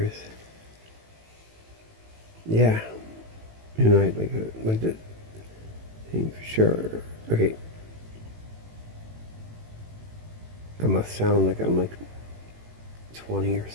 Yeah. You know, like the thing for sure. Okay. I must sound like I'm like 20 or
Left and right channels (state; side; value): late; left; 18 ms